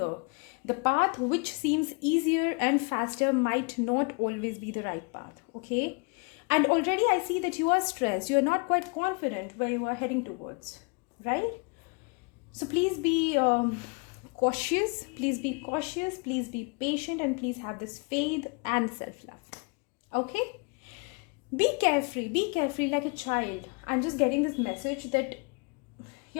The path which seems easier and faster might not always be the right path. Okay, and already I see that you are stressed, you are not quite confident where you are heading towards, right? So please be cautious, please be cautious, please be patient, and please have this faith and self-love. Okay, be carefree like a child. I'm just getting this message that you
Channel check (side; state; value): right; quieter; 32.6 dB